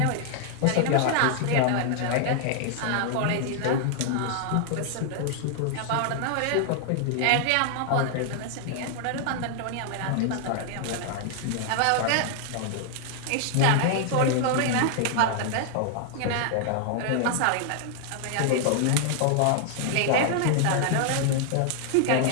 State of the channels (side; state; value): both; different; correlation 0.00